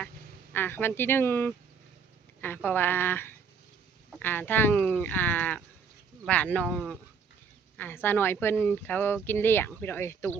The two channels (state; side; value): quieter; left; 5.9 dB